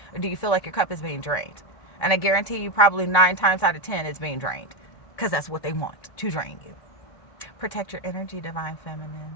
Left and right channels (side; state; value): right; late; 1.3 ms